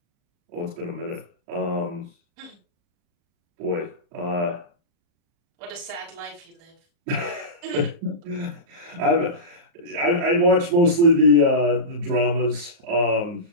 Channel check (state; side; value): late; left; 38 ms